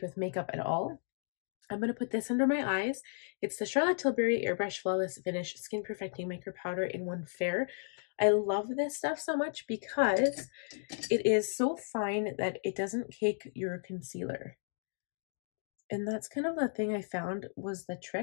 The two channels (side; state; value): right; silent; digital silence